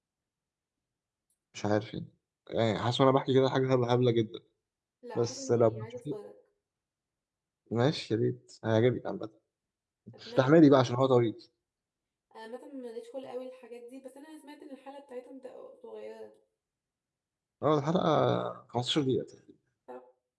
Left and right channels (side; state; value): both; identical; correlation 1.00